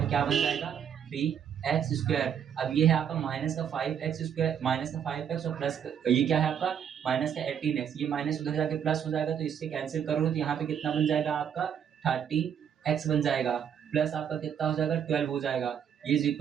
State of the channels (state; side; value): quieter; left; 8.5 dB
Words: पे क्या बन जाएगा 3x स्क्वायर। अब ये है आपका माइनस का 5x स्क्वायर माइनस का 5x और प्लस ये क्या है आपका माइनस का 18x, ये माइनस उधर जाके प्लस हो जाएगा तो इससे कैंसिल करोगे तो यहाँ पे कितना बन जाएगा आपका 13x बन जाएगा प्लस आपका कितना हो जाएगा 12 हो जाएगा, ये इज